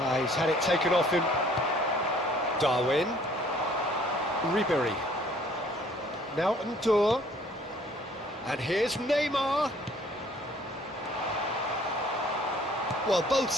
He's had it taken off him. Darwin. Ribery. Now Ndour. And here's Neymar. Well, both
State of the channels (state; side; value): normal; both; correlation 0.58